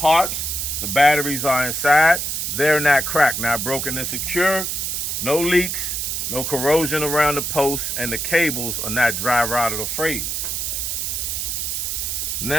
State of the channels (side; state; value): right; noise; hiss, 2 dB below the sound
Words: The batteries are inside. They're not cracked, not broken and secure, no leaks, no corrosion around the posts, and the cables are not dry rotted or frayed.